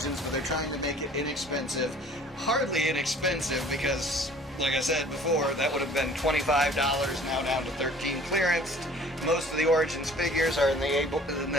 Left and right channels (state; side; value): normal; both; correlation 0.51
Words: but they're trying to make it inexpensive. Hardly inexpensive, because like I said before, that would have been $25, now down to $13 clearance. Most of the Origins figures are in